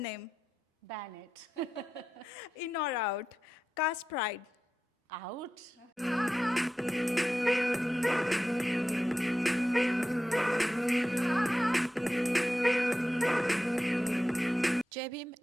Ban it. In or out? Caste pride. Out. Jai Bhim,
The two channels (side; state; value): both; normal; correlation 0.91